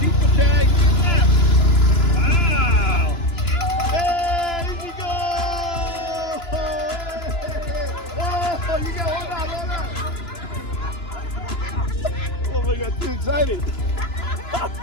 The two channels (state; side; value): late; right; 2.9 ms